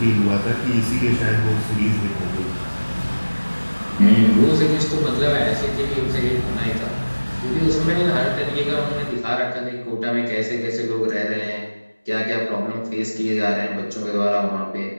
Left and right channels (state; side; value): inverted; both; correlation -1.00